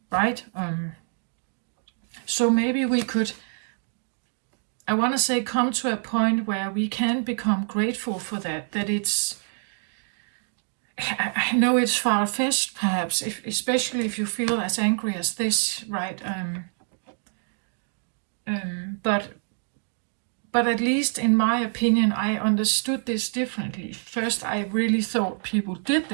right? So maybe we could, I want to say, come to a point where we can become grateful for that. That it's, I know it's far-fetched, perhaps, especially if you feel as angry as this, right? But at least in my opinion, I understood this differently. First, I really thought people did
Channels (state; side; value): silent; left; 61 dB below the other